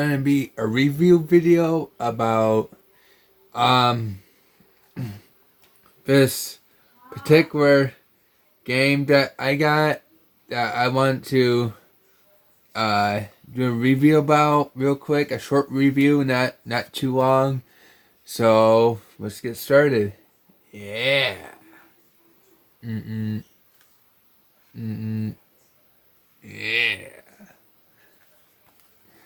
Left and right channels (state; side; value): identical; both; correlation 1.00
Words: be a review video about this particular game that I got that I want to do a review about real quick, a short review, not too long. So let's get started. Yeah. Mm-mm. Mm-mm. Yeah.